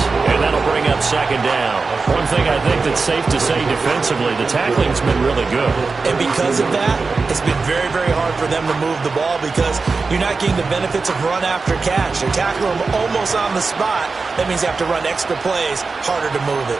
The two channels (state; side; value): quieter; left; 4.3 dB